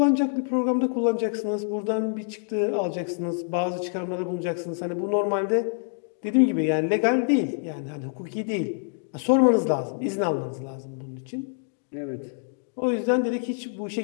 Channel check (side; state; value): right; silent; digital silence